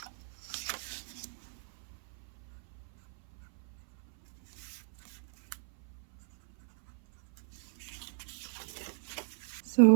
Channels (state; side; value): silent; left; 54 dB below the other